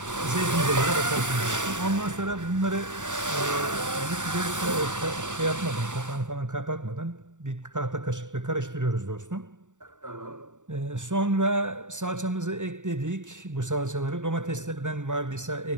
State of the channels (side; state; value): left; late; 0.86 ms